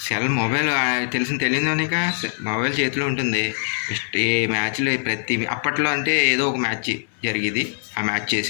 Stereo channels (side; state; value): right; silent; 64 dB below the other